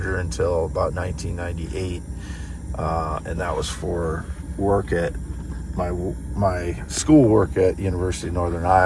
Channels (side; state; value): both; identical; correlation 1.00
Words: until about 1998, and that was for work at my school work at University of Northern